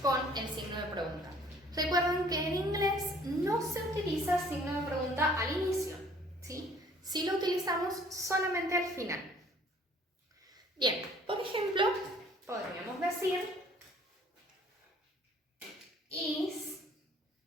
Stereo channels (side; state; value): both; normal; correlation 0.56